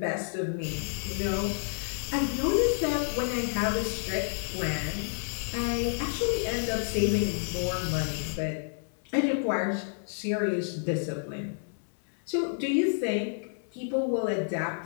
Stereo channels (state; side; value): silent; right; digital silence